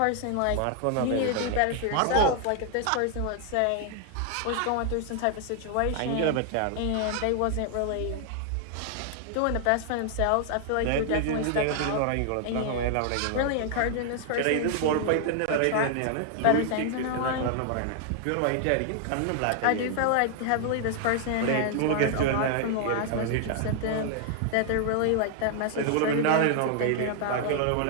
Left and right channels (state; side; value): different; both; correlation 0.00